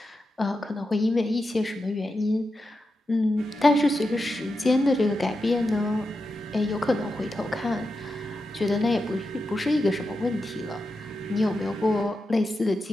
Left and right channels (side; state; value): both; normal; correlation 0.89